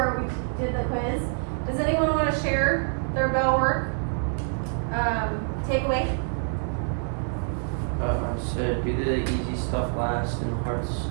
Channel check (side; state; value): left; silent; 56 dB below the other